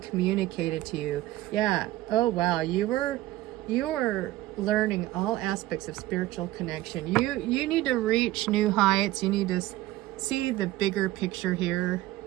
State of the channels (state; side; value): quieter; left; 16.5 dB